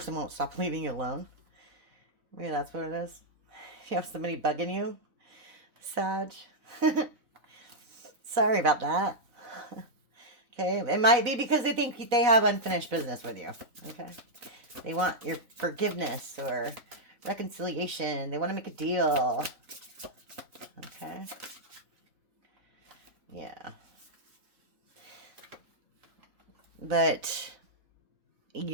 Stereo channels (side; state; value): left; late; 4.0 ms